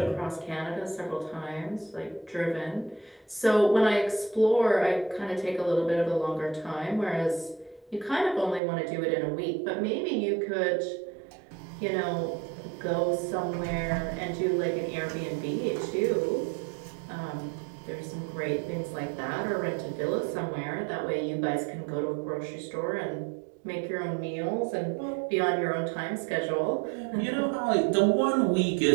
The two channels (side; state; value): left; drops out; at 8.6 s